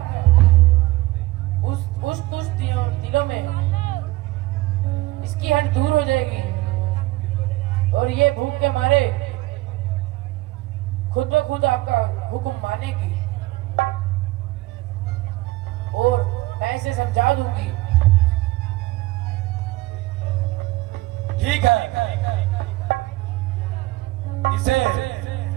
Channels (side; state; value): left; quieter; 19.5 dB